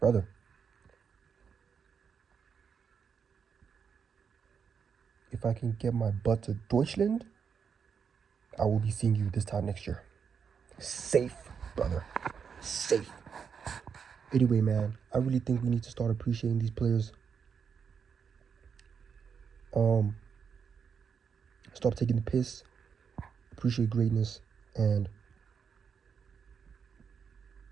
If I can get my butt to Deutschland, I will be seeing you this time next year. Safe, brother. Safe. Anyway, man, I really think we need to start appreciating these players. Stop taking the piss. Appreciate greatness. And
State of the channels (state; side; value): quieter; left; 6.6 dB